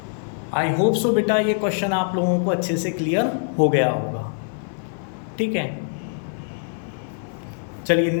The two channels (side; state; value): right; silent; 55 dB below the other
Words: आई होप सो बेटा ये क्वेश्चन आप लोगों को अच्छे से क्लियर हो गया होगा, ठीक है। चलिए